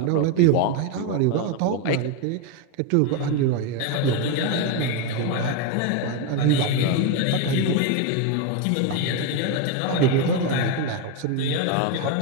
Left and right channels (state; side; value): different; both; correlation 0.02